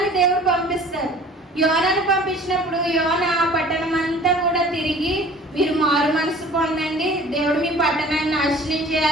దేవుడు పంపిస్తారు. యోనాను పంపించినప్పుడు యోనా ఆ పట్టణం అంతా కూడా తిరిగి, మీరు మారు మనసు పొందండి, దేవుడు మీ పట్టణాన్ని నాశనం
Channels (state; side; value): normal; both; correlation 0.48